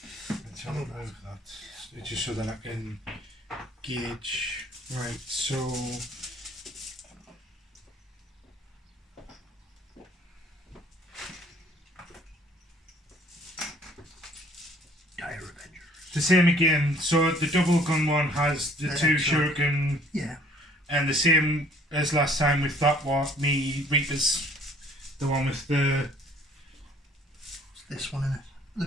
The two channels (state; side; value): normal; both; correlation 0.57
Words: have a look at that. It's just so that I can gauge. Right, so... Dire Avengers. The same again. So the double gun one has the 2 excellent. shuriken. Yeah. And the same as last time with that one, me Reapers. The one with the... It's this one in it. The